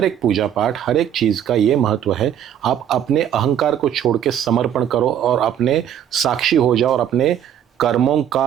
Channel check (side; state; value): left; quieter; 9.8 dB